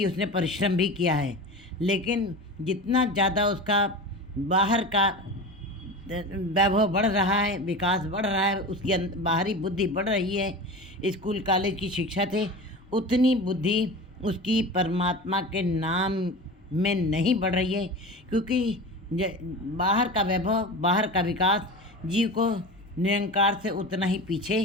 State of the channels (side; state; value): both; normal; correlation 0.30